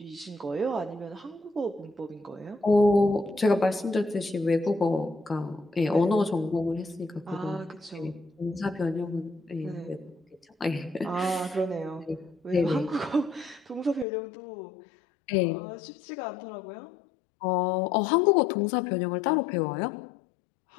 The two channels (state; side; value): drops out; right; at 14.1 s